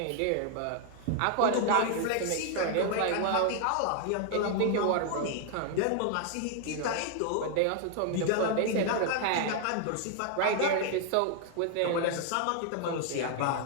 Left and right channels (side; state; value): both; different; correlation 0.00